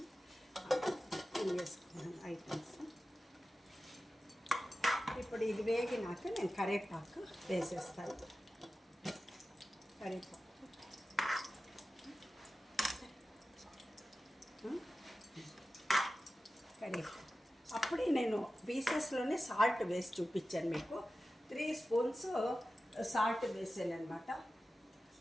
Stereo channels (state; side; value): normal; both; correlation 0.94